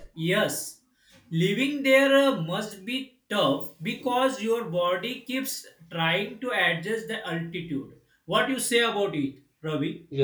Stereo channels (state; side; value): identical; both; correlation 1.00